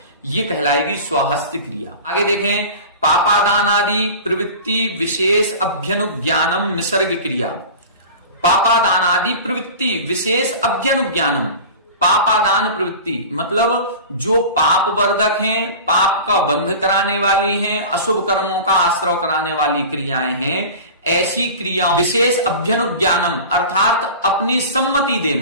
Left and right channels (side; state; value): both; inverted; correlation -0.35